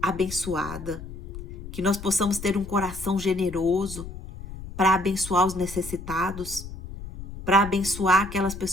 que nós possamos ter um coração generoso para abençoar os necessitados, para abençoar aquelas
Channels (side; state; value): left; noise; rumble, 11 dB below the sound